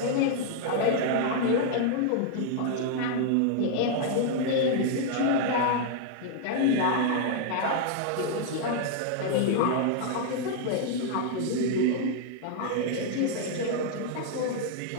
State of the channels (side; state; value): both; different; correlation 0.00